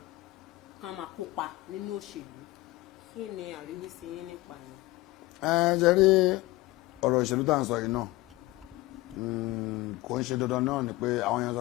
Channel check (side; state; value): right; quieter; 19.7 dB